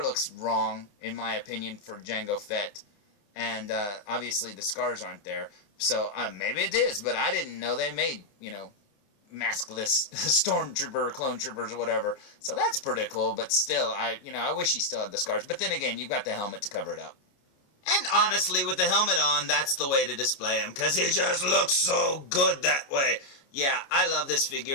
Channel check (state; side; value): late; right; 29 ms